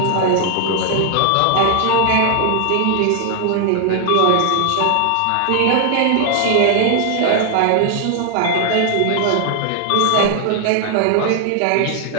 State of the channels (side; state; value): both; different; correlation 0.00